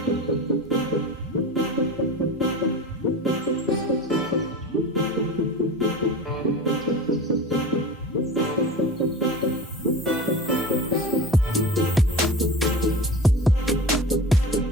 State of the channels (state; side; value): normal; both; correlation 0.32